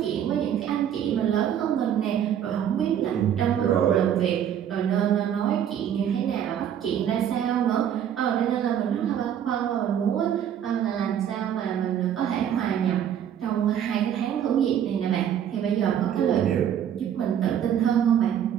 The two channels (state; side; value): quieter; left; 9.6 dB